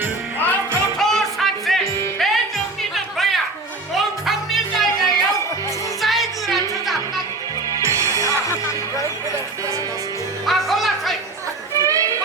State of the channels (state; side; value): quieter; left; 3.2 dB